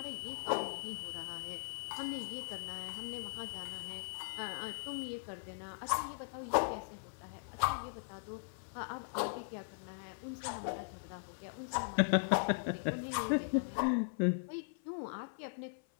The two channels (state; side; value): silent; right; 52 dB below the other